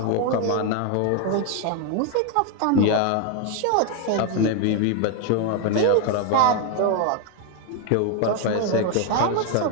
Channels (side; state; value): both; different; correlation 0.01